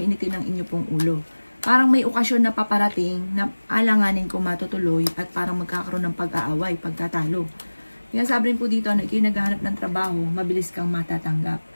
ang inyo pong ulo. Parang may okasyon na paparating na alanganin kung matutuloy at parang magkakaroon ng pag-aaway, pagkatalo. Kaya sabi rin po dito na kayo naghahanap ng trabaho, mabilis kang matatanggap.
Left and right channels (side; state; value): both; inverted; correlation -1.00